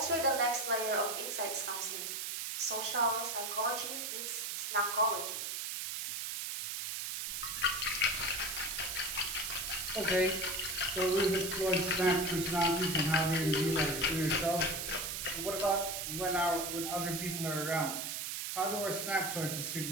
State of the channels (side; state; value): right; noise; hiss, 4 dB below the sound